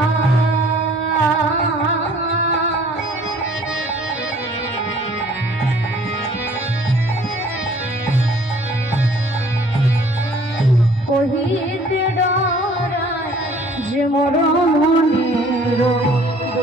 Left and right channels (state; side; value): normal; both; correlation 0.55